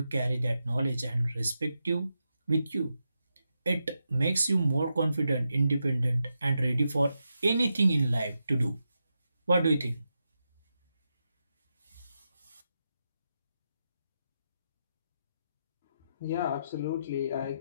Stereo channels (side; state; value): both; inverted; correlation -0.86